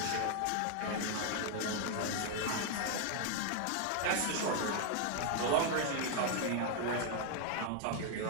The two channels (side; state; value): both; different; correlation 0.00